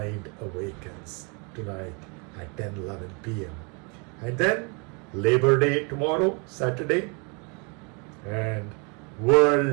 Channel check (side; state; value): left; quieter; 33.0 dB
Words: awakens tonight at 10:11 p.m. And then Labor Day tomorrow, Saturday, and